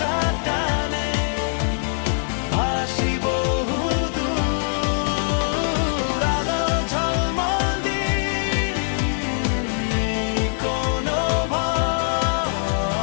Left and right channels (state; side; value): silent; right; digital silence